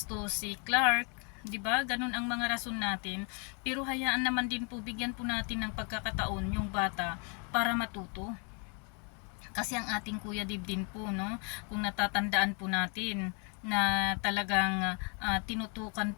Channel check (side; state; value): right; quieter; 37.0 dB